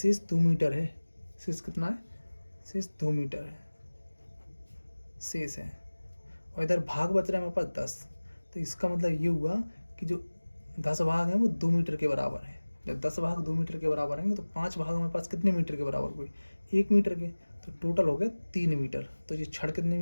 2 मीटर है, शेष कितना है, शेष 2 मीटर है शेष है, और इधर भाग बच रहा है हमारे पास 10, तो इसका मतलब ये हुआ कि जो 10 भाग हैं वो 2 मीटर के बराबर है। जब 10 भाग 2 मीटर के बराबर होंगे तो 5 भाग हमारे पास कितने मीटर के बराबर हुए, 1 मीटर के, तो टोटल हो गया 3 मीटर। तो ये छड़ कितने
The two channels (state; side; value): inverted; both; correlation -1.00